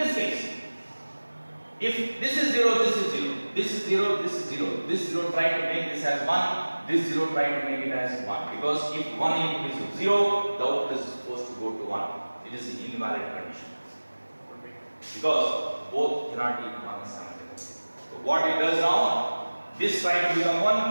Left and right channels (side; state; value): both; inverted; correlation -1.00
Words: case, if this is 0, this is 0, this is 0, this is 0, this 0 try to make this as 1, this 0 try to make it as 1. Because if one input is 0, the output is supposed to go to 1. It is an invalid condition. Okay. Because both cannot be 1 simultaneously. So what it does now, this try to become